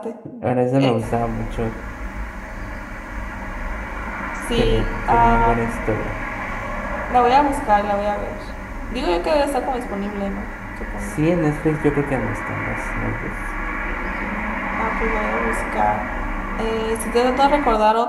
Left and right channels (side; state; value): both; identical; correlation 1.00